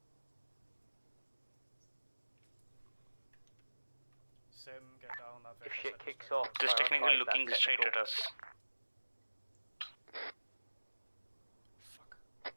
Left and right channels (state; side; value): inverted; both; correlation -1.00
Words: Sim, get down. That If vehicle shit set us kicks straight. off, Just technically prioritise looking that straight technical. at us.